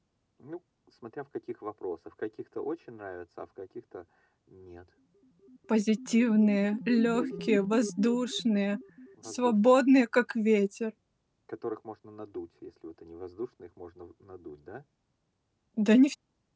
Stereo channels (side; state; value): both; identical; correlation 1.00